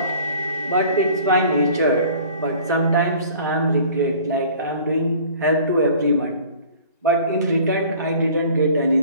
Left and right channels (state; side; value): inverted; both; correlation -0.48